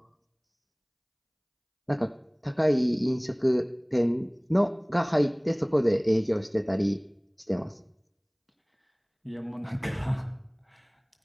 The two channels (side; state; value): both; identical; correlation 1.00